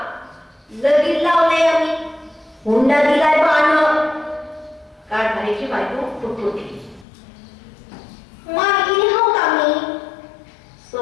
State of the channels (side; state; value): right; drops out; at 7.1 s